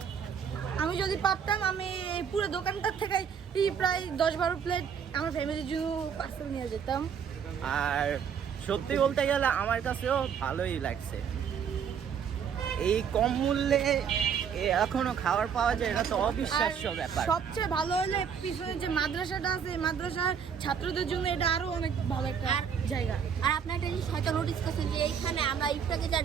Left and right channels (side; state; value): left; quieter; 7.4 dB